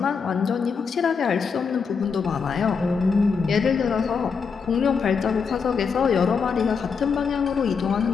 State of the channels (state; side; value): quieter; right; 5.7 dB